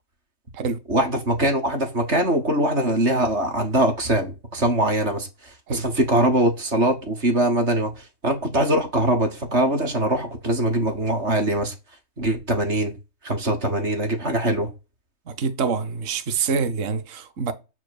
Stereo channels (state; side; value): late; left; 3.2 ms